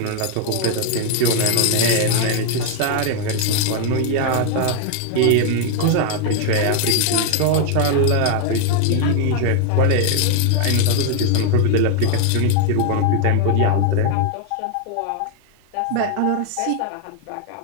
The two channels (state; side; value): different; both; correlation 0.00